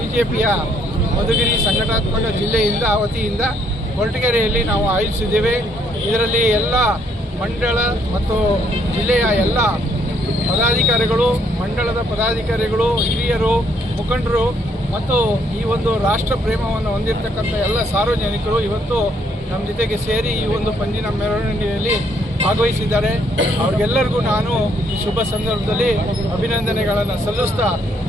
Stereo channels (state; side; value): normal; both; correlation 0.69